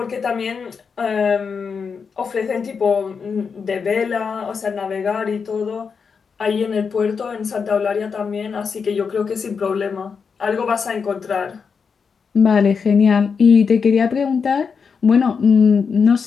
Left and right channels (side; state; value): right; quieter; 5.8 dB